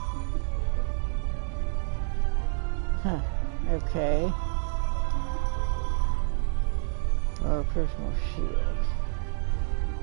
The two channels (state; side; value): silent; left; digital silence